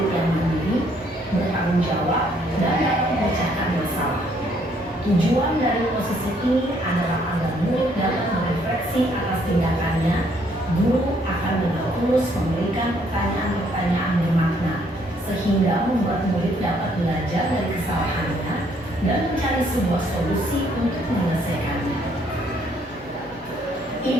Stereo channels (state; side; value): normal; both; correlation 0.67